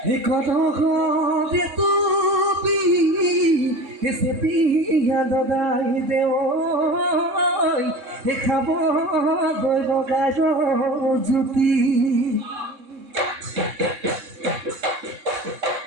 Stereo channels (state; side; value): late; left; 3.7 ms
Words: ঘৰে তুবি চেপিয়া লগাই দেৱ দেখাব গৈ বগাই জ্যোতি